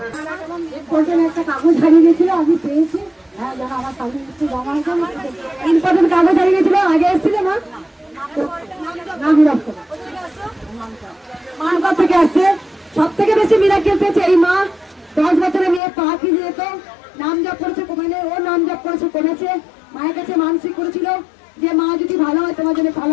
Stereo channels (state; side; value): drops out; right; at 15.8 s